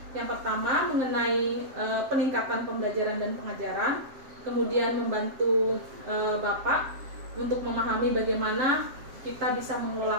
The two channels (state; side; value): late; left; 7.5 ms